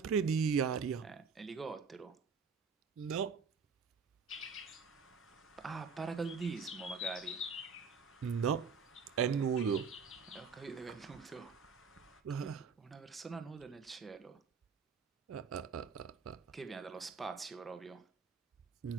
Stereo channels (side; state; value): left; quieter; 5.5 dB